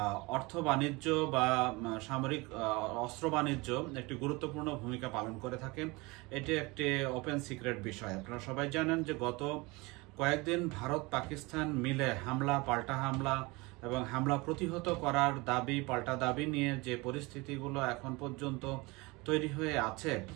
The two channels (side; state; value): left; quieter; 24.5 dB